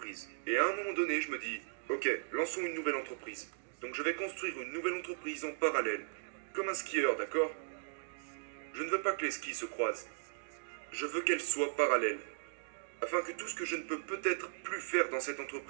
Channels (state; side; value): silent; left; digital silence